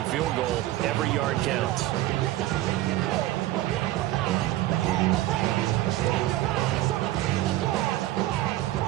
field goal, every yard counts.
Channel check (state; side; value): quieter; left; 15.6 dB